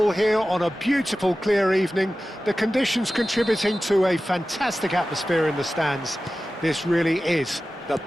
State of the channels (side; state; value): both; normal; correlation 0.95